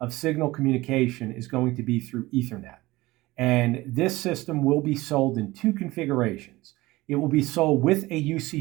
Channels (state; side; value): quieter; left; 19.6 dB